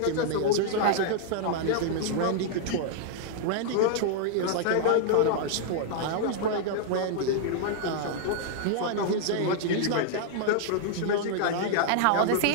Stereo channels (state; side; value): different; both; correlation -0.01